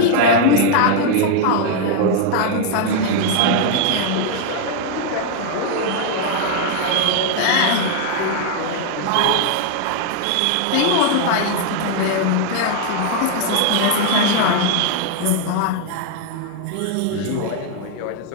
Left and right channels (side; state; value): both; different; correlation 0.00